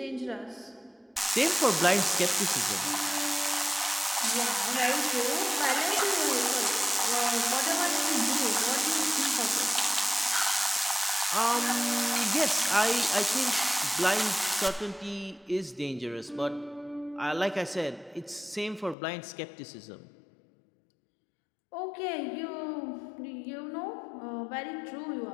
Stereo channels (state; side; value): drops out; right; at 18.9 s